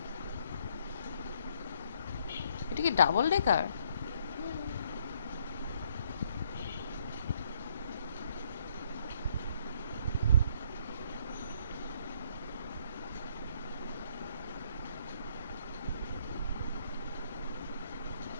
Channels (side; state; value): both; inverted; correlation -0.67